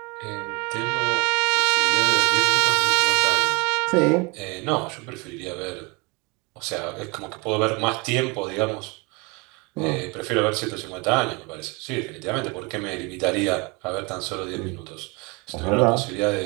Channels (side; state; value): left; quieter; 28.8 dB